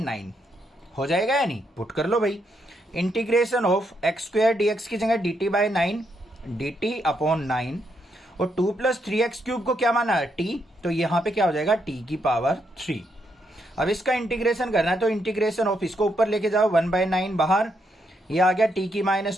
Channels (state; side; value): normal; both; correlation 0.78